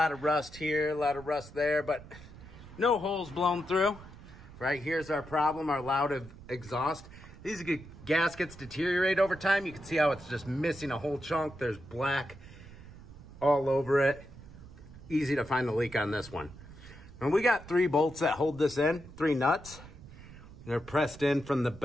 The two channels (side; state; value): right; noise; rumble, 17 dB below the sound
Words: of rust here, a lot of rust there, but no holes blown through. Right here's our problem, our loud exhaust. These gaskets deteriorate over time. You can see how it's just missing a whole chunk. There's black all over it. Easy to find the leak on this one. And we got 3 bolts that hold this in, 3 nuts. They're pressed in from the